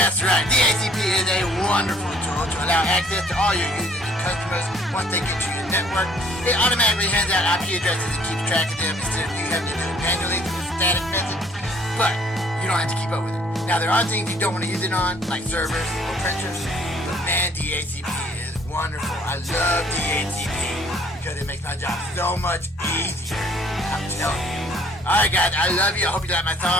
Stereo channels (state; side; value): normal; both; correlation 0.59